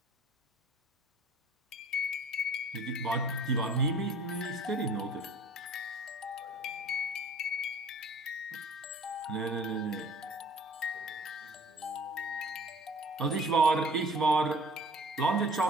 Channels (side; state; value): both; normal; correlation 0.48